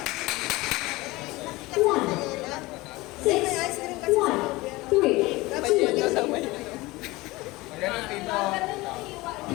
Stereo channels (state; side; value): quieter; right; 21.0 dB